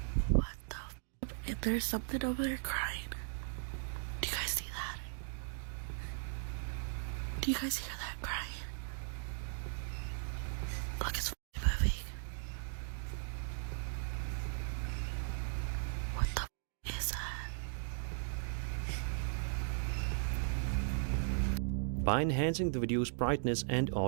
What the and there's something over there crying. Do you guys hear that crying? Look, it's moving. What the is that? By enhancing the video's brightness and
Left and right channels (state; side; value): silent; left; digital silence